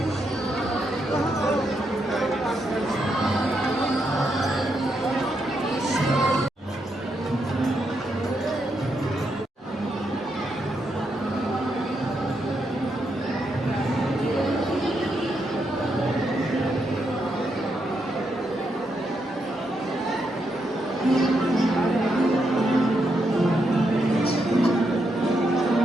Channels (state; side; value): normal; both; correlation 0.81